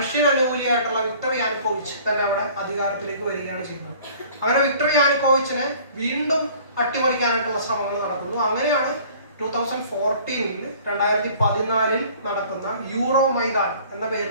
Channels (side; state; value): both; inverted; correlation -0.50